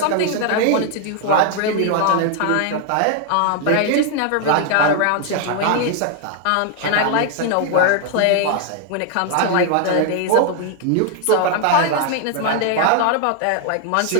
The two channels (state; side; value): different; both; correlation 0.00